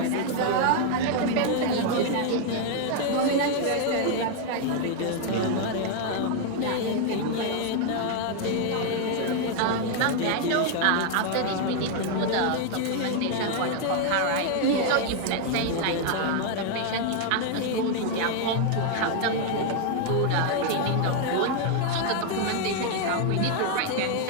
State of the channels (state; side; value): different; both; correlation 0.00